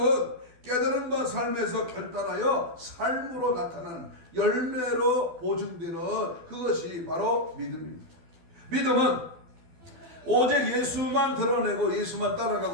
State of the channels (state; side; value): late; left; 12 ms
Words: 깨달음과 삶에서 결단하여 삶으로 나타나는 열매로 보증되는 그것이 바로 믿음입니다. 믿음은 오직 예수만 드러내고 예수만